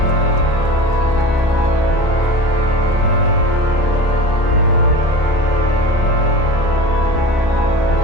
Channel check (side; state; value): right; late; 29 ms